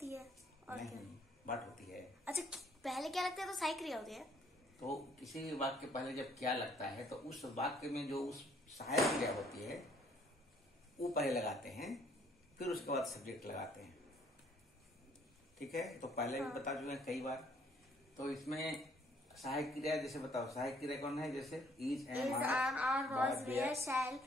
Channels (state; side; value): normal; both; correlation 0.63